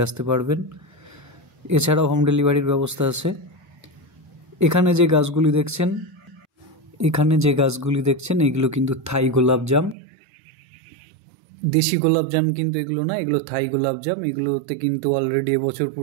আসতে পারবেন। এছাড়াও হোম ডেলিভারির ব্যবস্থা আছে। এখানে যে গাছগুলি দেখছেন এগুলো কিন্তু থাই গোলাপজাম, দেশি গোলাপজাম কিন্তু এগুলো না, এগুলো থাই গোলাপজাম। এগুলোতে কিন্তু অলরেডি এবছর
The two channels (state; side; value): drops out; left; at 10.0 s